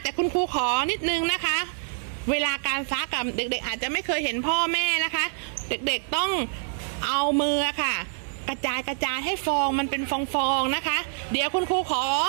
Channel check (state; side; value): silent; left; digital silence